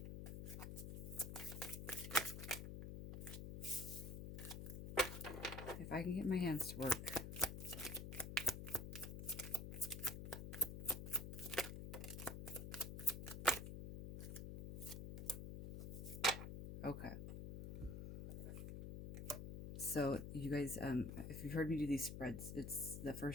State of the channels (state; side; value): noise; left; hum, 7 dB below the sound